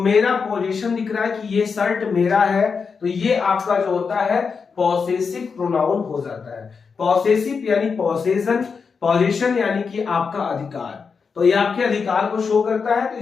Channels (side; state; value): right; quieter; 5.5 dB